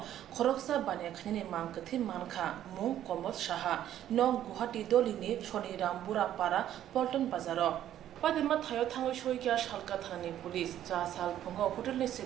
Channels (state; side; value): quieter; left; 11.6 dB